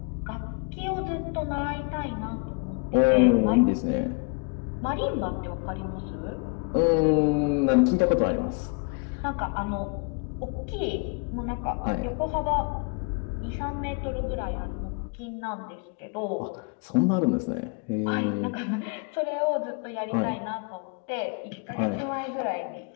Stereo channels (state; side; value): quieter; right; 33.1 dB